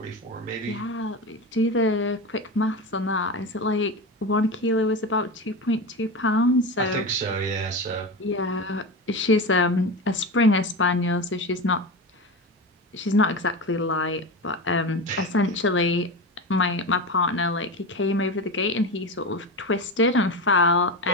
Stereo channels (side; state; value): both; normal; correlation 0.22